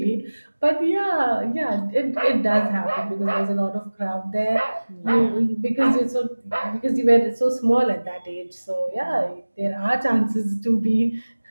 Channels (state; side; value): inverted; both; correlation -1.00